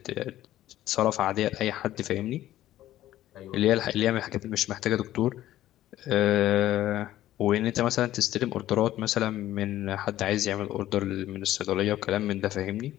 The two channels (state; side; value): quieter; right; 13.8 dB